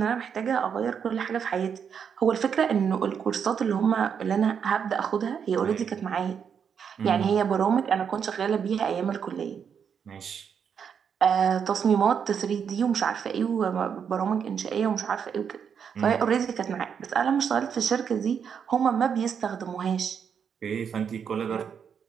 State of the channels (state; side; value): quieter; left; 7.3 dB